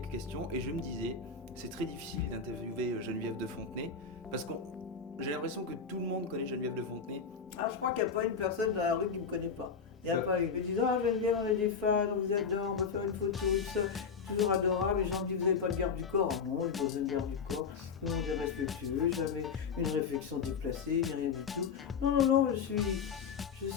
questions, et je me disais, c'est très difficile d'interviewer Geneviève de Fontenay, parce que j'ai l'impression que tout le monde connaît Geneviève de Fontenay. Ah, je crois qu'il n'y a pas une personne dans la rue qui ne me connaît pas. Il n'y a pas une. Ils me disent ah, Geneviève, on est des fans, on vous adore, on va faire une photo, tout ça. Toujours adorable. Les gens me disent vous n'avez pas de garde du corps. Ah non, j'ai pas besoin de garde du corps. Tout le monde est respectueux, jamais une réflexion déplacée, ni rien du tout. Non, non, non, je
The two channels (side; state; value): right; quieter; 5.8 dB